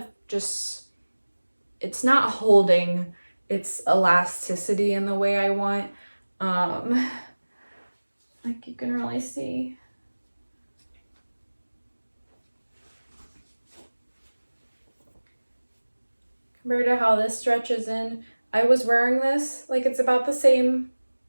just, it's not holding its elasticity in the way I want. Like you can really see. Compared to how this stretches in, I was wearing this, like it's about the same,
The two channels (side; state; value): both; inverted; correlation -1.00